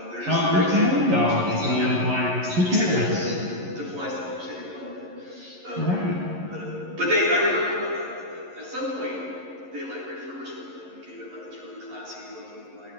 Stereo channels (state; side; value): late; left; 11 ms